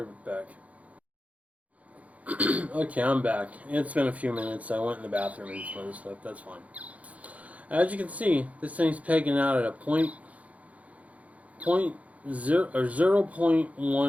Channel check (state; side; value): late; left; 0.068 ms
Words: right back. Okay, I'm back. It's been a few minutes. I went in the bathroom and some other stuff. That's fine. As you can see, this thing's pegging out at a 0.1